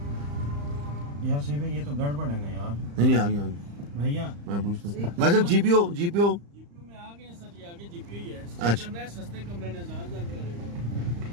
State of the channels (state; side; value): late; left; 35 ms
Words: यार सही भाई, ये तो गड़बड़ है ना यार। नहीं आगे आगे भैया मैं पूछता हूँ भाई साहब, जीपीओ जीपीओ में आ गए सर, ये आगे जीपीओ ही है। अच्छा करना है सस्ते कमरे ने ज़्यादा कर रहे हो।